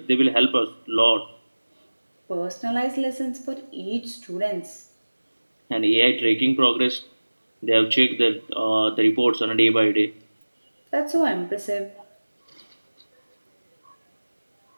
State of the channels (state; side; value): inverted; both; correlation -1.00